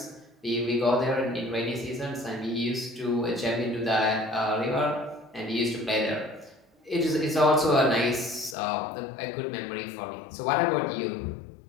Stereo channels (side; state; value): right; drops out; at 8.6 s